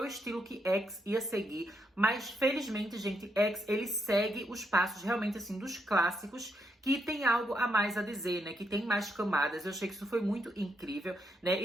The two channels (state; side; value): normal; both; correlation 0.78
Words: o estilo que X ia seguir, mas felizmente, gente, X, ele segue os passos realmente, assim, dos clássicos, que tem algo a mais a dizer, né? Que tem mais camadas. Eu achei que isso foi muito incrível, né?